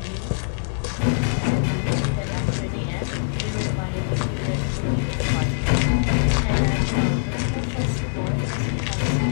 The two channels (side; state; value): right; silent; digital silence